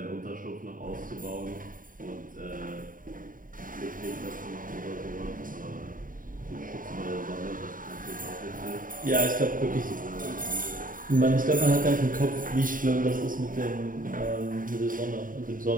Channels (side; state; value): left; late; 0.40 ms